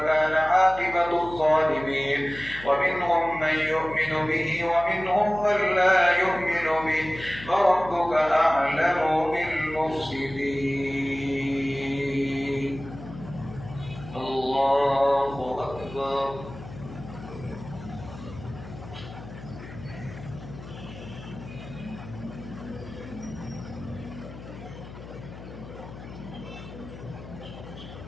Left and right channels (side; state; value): left; noise; hum, 14 dB below the sound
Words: عاقبة الظالمين ومنهم من يؤمن به ومنهم من لا يؤمن به وربك أعلم بالمفسدين الله أكبر